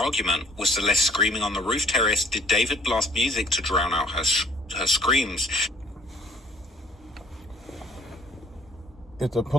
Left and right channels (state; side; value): normal; both; correlation 0.59